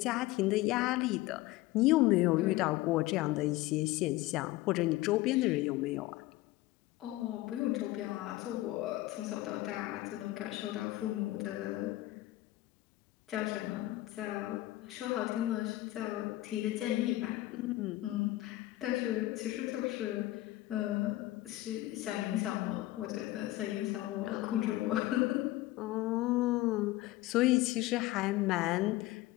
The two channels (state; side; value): quieter; right; 17.4 dB